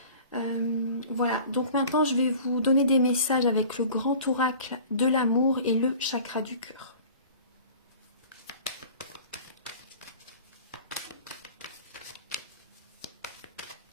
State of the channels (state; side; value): inverted; both; correlation -0.44